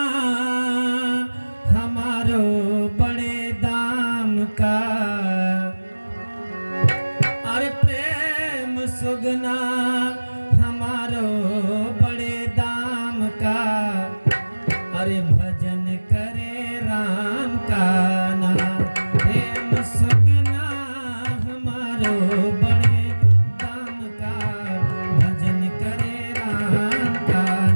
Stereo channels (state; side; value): inverted; both; correlation -1.00